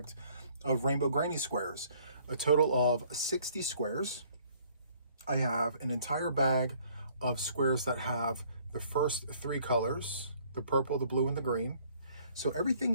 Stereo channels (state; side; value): inverted; both; correlation -0.60